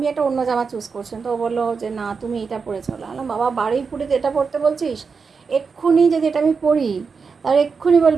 একটা অন্য জামা চুজ করছিলাম, তো ও বললো যে না তুমি এটা পরে চলো। বললাম বাবা, বারুইপুরে এটা পরতে বলছিস? এক্ষুনি যদি এটা আমি পরি, তার এক্ষুনি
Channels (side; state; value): left; quieter; 5.3 dB